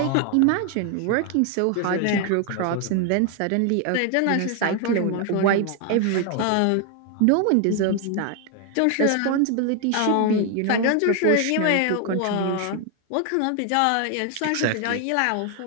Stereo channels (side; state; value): both; different; correlation 0.01